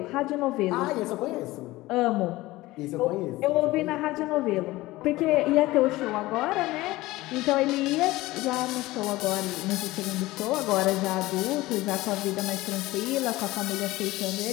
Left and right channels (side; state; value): right; quieter; 18.8 dB